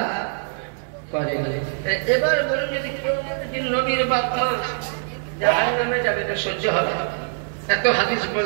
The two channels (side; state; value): left; silent; digital silence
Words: করেনি। এবার বলুন, যদি কেউ নবীর বাপ মা জাহান্নামে যাবে তো সহ্য হবে? এত হাদিস